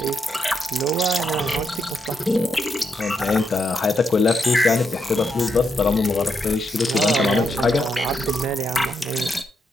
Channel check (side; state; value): both; normal; correlation 0.81